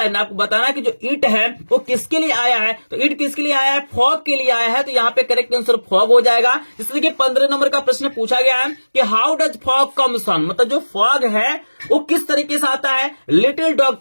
आपको बताना है कि जो इट है वो किसके लिए आया है। तो इट किसके लिए आया है, फॉग के लिए आया है। तो यहाँ पे करेक्ट आंसर फॉग हो जाएगा। इसलिए कि 15 नंबर का प्रश्न पूछा गया है कि how does fog comes on. मतलब जो फॉग है वो किस तरीके से आता है। लिटिल डॉग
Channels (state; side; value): inverted; both; correlation -1.00